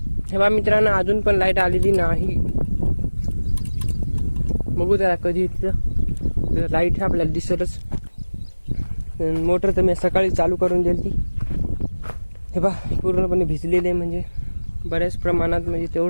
हे बा मित्रांनो, अजून पण लाईट आलेली नाही. बघू त्याला कधी येतं. लाईट आपल्याला दिसतच. मोटर तर मी सकाळी चालू करून दिली ती. हे बा पूर्णपणे भिजलेले आहे, म्हणजे बऱ्याच प्रमाणात, म्हणजे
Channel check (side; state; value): both; inverted; correlation -1.00